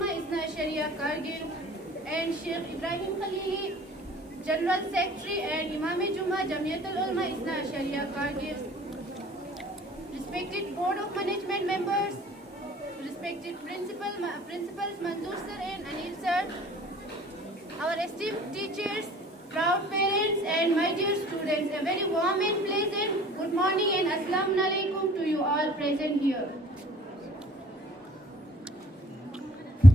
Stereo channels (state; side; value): normal; both; correlation 0.53